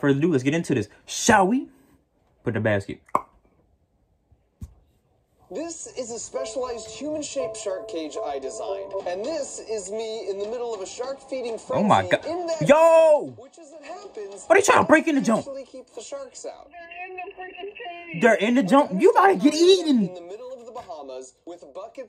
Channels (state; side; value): identical; both; correlation 1.00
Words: further ado, let's get into this. Shall we? Put in the basket. This is a specialized human-shaped shark cage I designed. And this is me in the middle of a shark-feeding frenzy. Oh my god. In that Yo! which, as it happens, what are you trying to break in the jump? Keep the sharks out. They're in the jump. You gotta get eaten. In the middle of the Bahamas, with